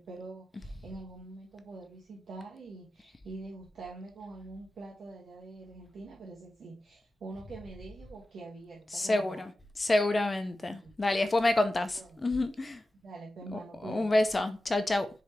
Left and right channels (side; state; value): both; normal; correlation 0.94